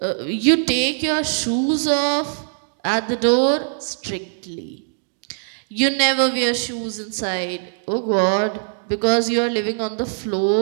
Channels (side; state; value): left; silent; digital silence